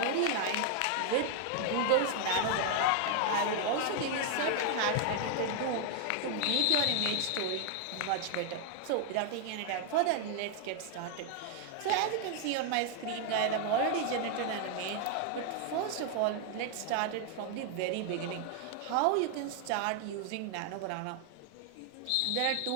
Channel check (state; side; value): different; both; correlation 0.00